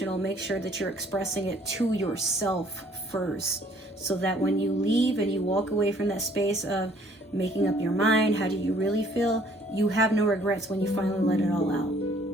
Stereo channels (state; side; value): normal; both; correlation 0.59